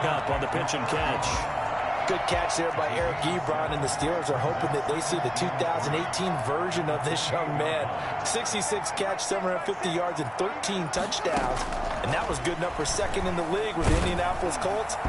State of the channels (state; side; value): identical; both; correlation 1.00